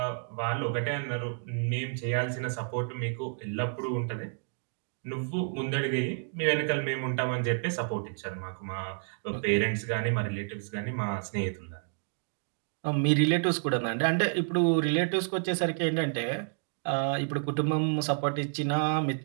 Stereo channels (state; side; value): silent; left; digital silence